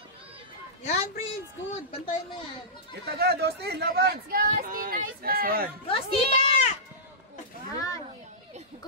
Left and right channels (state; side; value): normal; both; correlation -0.16